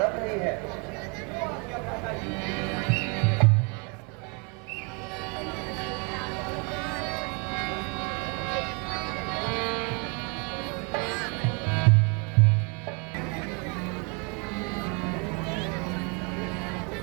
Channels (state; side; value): quieter; left; 33.3 dB